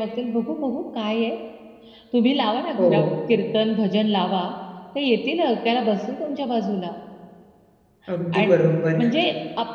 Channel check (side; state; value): both; identical; correlation 1.00